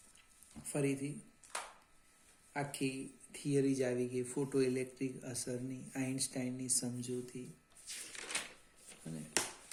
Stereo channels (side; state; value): both; identical; correlation 1.00